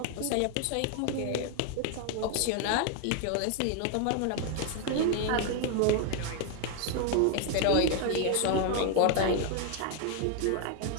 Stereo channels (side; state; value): both; different; correlation 0.01